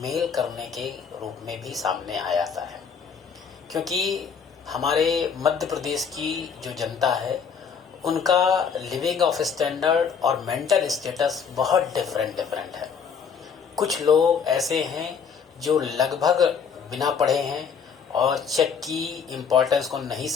करने के रूप में भी सामने आ जाता है, क्योंकि हमारे मध्य प्रदेश की जो जनता है उनका लिविंग ऑफ स्टैंडर्ड और मेंटल स्टेटस बहुत डिफरेंट है। कुछ लोग ऐसे हैं जो लगभग बिना पढ़े हैं और चेक की इम्पोर्टेंस को नहीं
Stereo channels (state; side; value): quieter; right; 6.5 dB